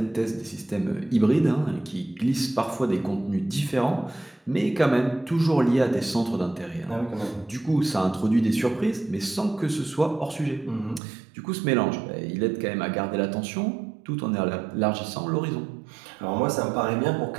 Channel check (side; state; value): left; drops out; at 11.0 s